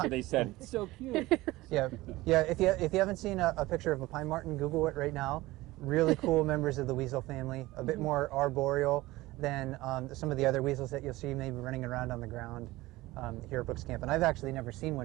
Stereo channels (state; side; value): quieter; left; 18.9 dB